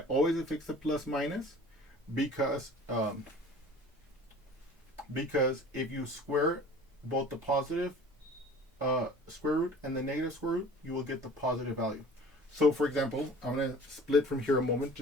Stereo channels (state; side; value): normal; both; correlation 0.45